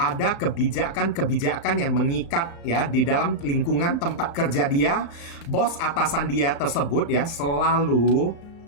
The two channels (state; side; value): late; right; 34 ms